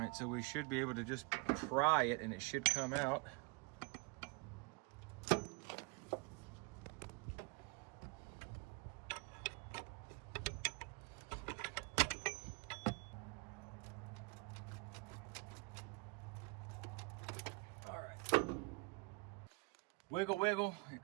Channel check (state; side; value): quieter; left; 28.5 dB